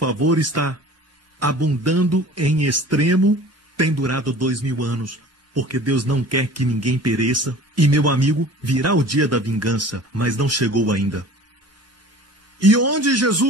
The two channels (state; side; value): normal; both; correlation 0.43